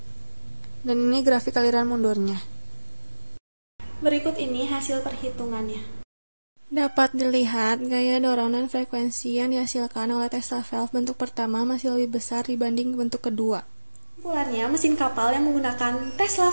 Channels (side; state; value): both; inverted; correlation -1.00